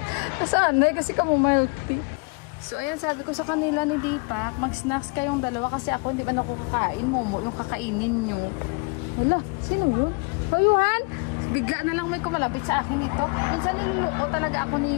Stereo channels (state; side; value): quieter; right; 32.2 dB